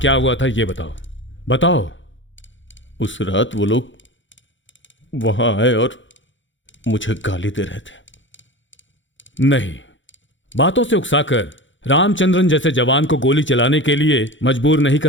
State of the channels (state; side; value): late; right; 0.55 ms